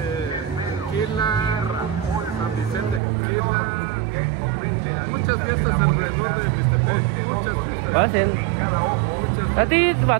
Muchas fiestas alrededor de Mixtepec, muchas fiestas. Pasen. A ti va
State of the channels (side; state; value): left; drops out; at 3.0 s